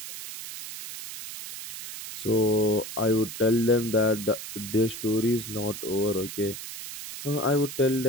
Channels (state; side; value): noise; right; hiss, 10 dB below the sound